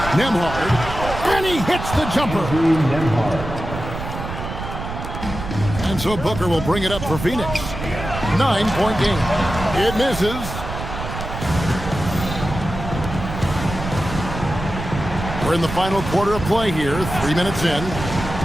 Nembhard. And he hits the jumper. And so Booker will bring it up for Phoenix. 9-point game. It misses. We're in the final quarter of play here. 3 minutes in.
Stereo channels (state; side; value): noise; right; rumble, 7 dB below the sound